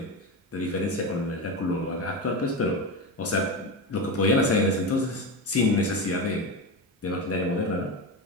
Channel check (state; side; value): normal; both; correlation 0.20